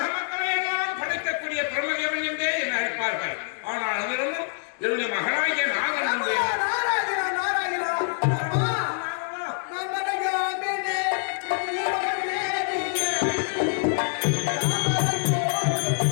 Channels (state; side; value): silent; right; digital silence